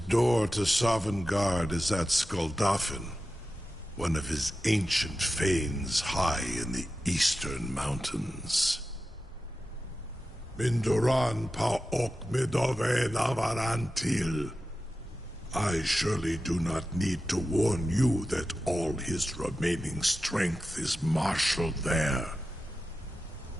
door to Sovngarde is at Skuldafn, one of his ancient fanes high in the eastern mountains. Mindoran pa ok midove navarantil. I surely do not need to warn you that all his remaining strength is marshaled there.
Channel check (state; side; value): normal; both; correlation 0.92